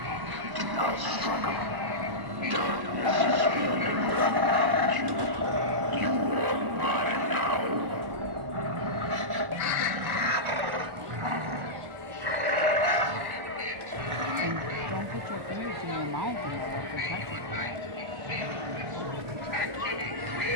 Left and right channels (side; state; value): left; late; 1.1 ms